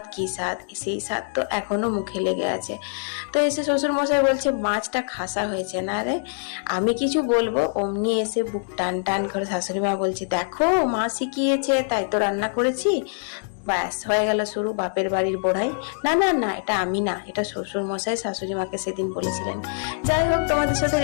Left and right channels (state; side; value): silent; right; digital silence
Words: কি স্বাদ, সেই স্বাদ তো এখনো মুখে লেগে আছে। তো এসে শ্বশুর মশাই বলছে মাছটা খাসা হয়েছে না রে। আমি কিছু বলবো, অমনি এসে বুক টান টান করে শাশুড়ি মা বলছে, দেখো মা শিখিয়েছে তাই তো রান্না করেছি। ব্যাস, হয়ে গেল শুরু বাপের বাড়ির বড়াই। না না না, এটা আমি না, এটা শ্বশুর মশাই শাশুড়ি মাকে সেদিন বলেছিলেন। যাই হোক, তোমাদের সাথে